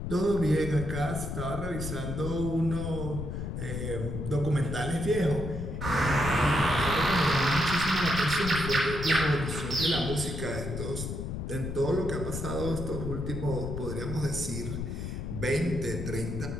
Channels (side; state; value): left; noise; rumble, 5 dB below the sound